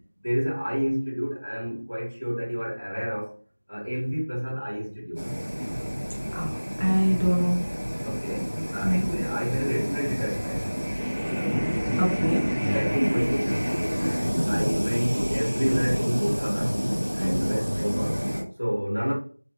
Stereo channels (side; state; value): both; inverted; correlation -1.00